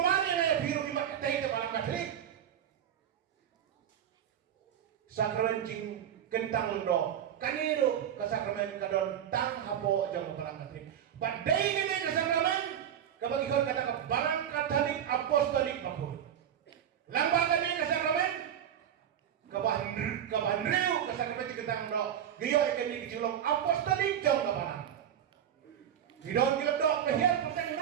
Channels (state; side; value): quieter; left; 9.7 dB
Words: biru di mata itu balang Katolik. Sakramen jing kentang londo. Kaniru kesakramen kadon tang hapo jang balang Katolik. Badai ini kesakramen kabagi kau kata balang Katolik apostolik bakul. Lambaga ini kesakramen kabahan riu kesakramen jing kentang londo. Giyo ikan ni kecilong apostolik jang balang. Hidon kilap dok kehian petang